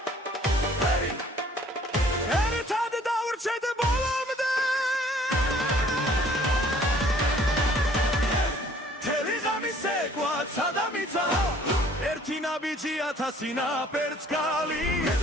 ერთად დავრჩეთ ბოლომდე მთელი ღამე ცეკვა ცადამიცა ერთი ნაბიჯი ათასი ნაპერწკალი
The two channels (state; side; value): normal; both; correlation 0.56